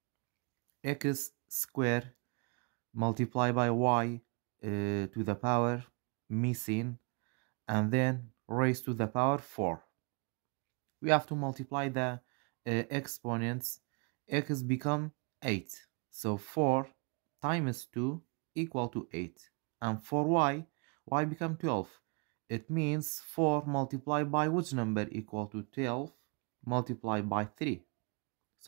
X squared multiplied by y to the power missing and then raised to the power 4. We have to multiply the exponents. X become 8. So 4 times 2 equal to 8. And for y become 12. It means 4 multiplied by which number equal to 12 multiplied by 3.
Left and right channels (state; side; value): quieter; left; 34.3 dB